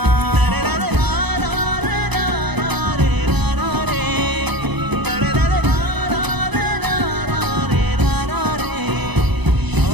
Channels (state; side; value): late; left; 0.99 ms